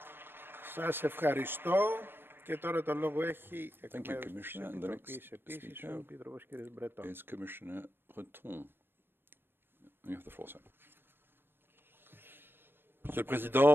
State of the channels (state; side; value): late; left; 0.10 ms